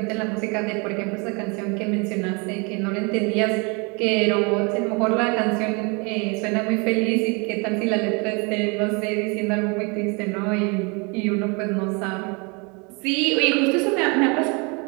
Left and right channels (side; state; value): left; quieter; 31.0 dB